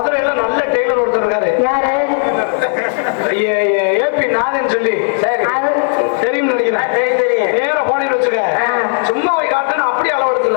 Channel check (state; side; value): silent; right; 68 dB below the other